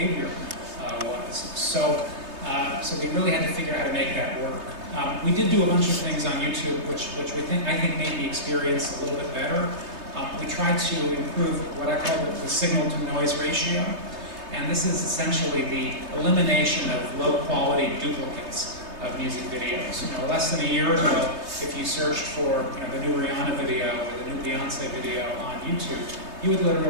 was. So we really had to figure out how to make that work. We did do a bunch of things on YouTube, which I think made the experience a little bit better. We tried to improve what I call the signal-to-noise ratio, and this is essentially the elimination of low-quality duplicates of music videos. Less than a year ago, if you searched for the new Rihanna video or the new Beyonce video on YouTube, you would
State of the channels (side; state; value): left; late; 3.2 ms